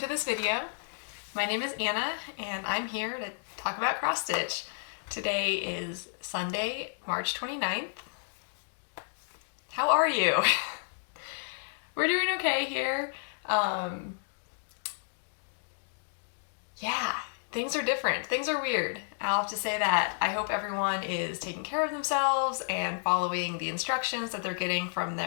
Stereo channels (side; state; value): right; silent; digital silence